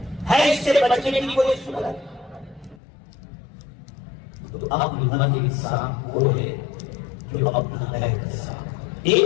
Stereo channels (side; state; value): right; drops out; at 2.8 s